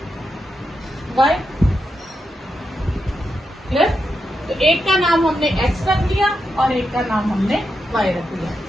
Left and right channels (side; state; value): both; normal; correlation 0.86